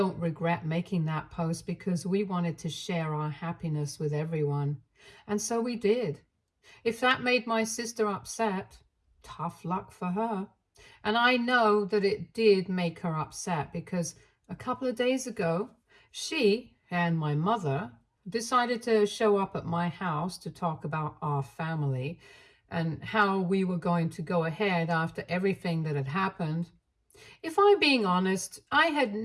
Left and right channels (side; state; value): both; identical; correlation 1.00